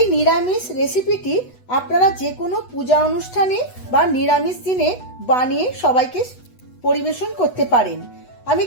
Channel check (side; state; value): right; late; 8.1 ms